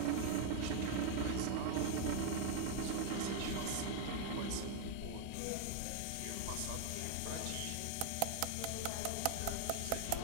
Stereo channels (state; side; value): different; both; correlation 0.01